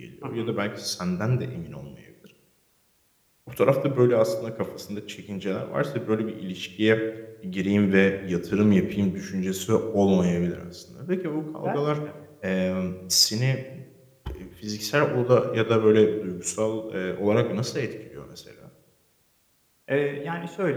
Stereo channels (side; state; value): both; identical; correlation 1.00